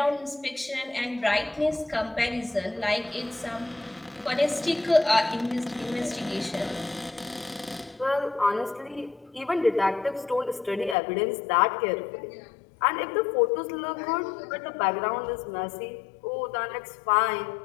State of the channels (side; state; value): right; drops out; at 11.0 s